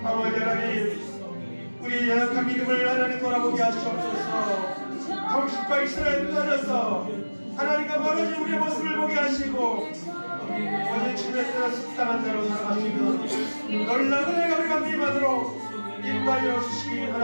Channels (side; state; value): both; inverted; correlation -1.00